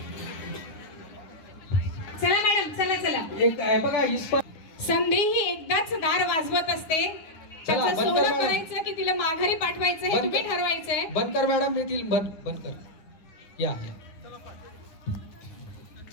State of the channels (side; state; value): right; late; 9.9 ms